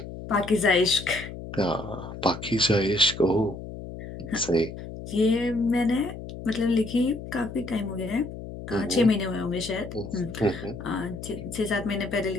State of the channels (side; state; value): left; noise; hum, 11 dB below the sound